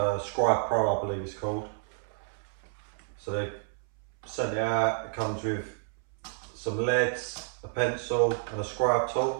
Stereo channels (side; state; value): left; silent; 58 dB below the other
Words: Scribe Pro, I believe it's called. So they sent it out. It comes with some leads, a pencil and a scribe